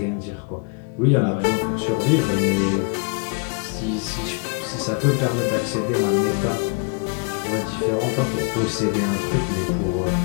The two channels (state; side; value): quieter; right; 36.0 dB